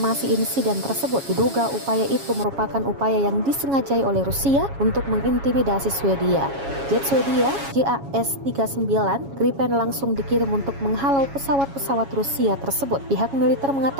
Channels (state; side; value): late; left; 7.2 ms